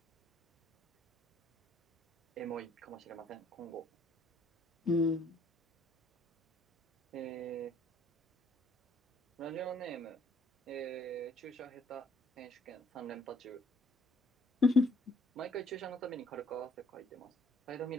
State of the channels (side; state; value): both; normal; correlation 0.63